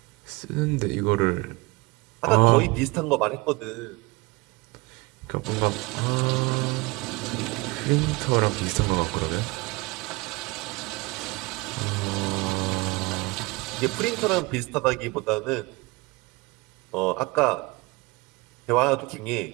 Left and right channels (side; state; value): left; quieter; 24.2 dB